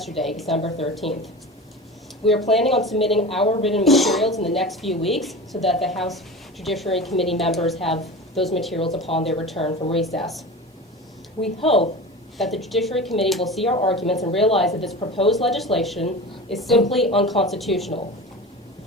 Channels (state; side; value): normal; both; correlation 0.32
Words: December 13th. We are planning on submitting our written materials in the next few weeks so that the House Judiciary Committee members have those materials upon their return from recess. We hope that the Judiciary Committee will see our arguments and realize that this proposed legislation is simply unconstitutional.